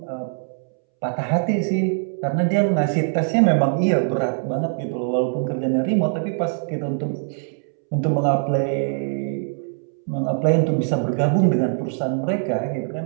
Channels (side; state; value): left; silent; 64 dB below the other